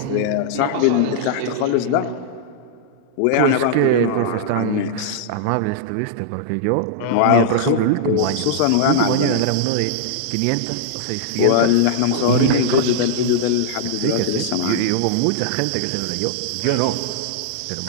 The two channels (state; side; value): different; both; correlation -0.02